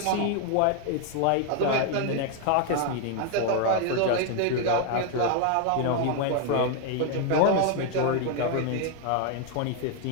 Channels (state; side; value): different; both; correlation 0.01